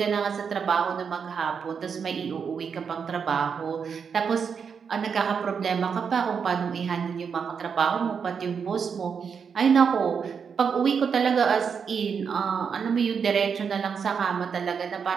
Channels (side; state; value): left; quieter; 6.4 dB